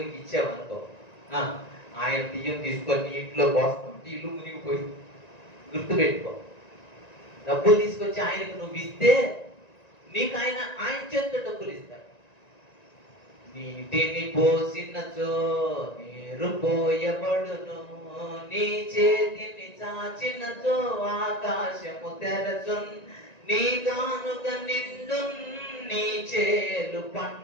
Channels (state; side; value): late; right; 1.9 ms